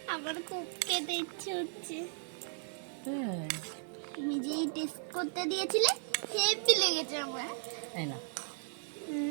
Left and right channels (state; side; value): silent; left; 54 dB below the other